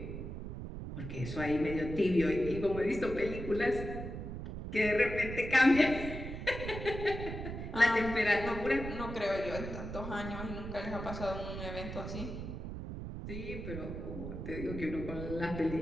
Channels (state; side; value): noise; right; rumble, 7 dB below the sound